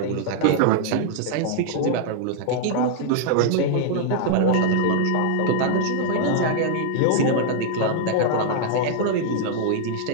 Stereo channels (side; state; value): both; different; correlation 0.00